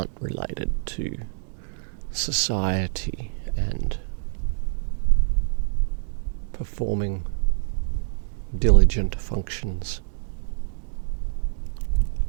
related to society and performing diligent functions.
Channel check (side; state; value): left; silent; digital silence